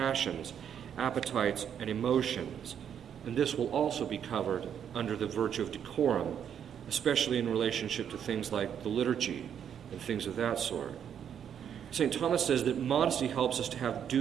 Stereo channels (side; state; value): left; quieter; 8.7 dB